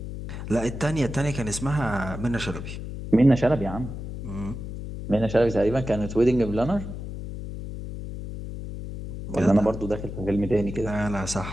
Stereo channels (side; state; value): left; noise; hum, 8 dB below the sound